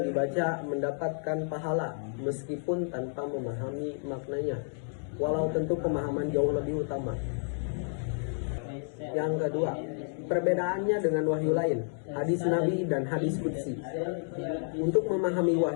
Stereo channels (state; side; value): silent; right; digital silence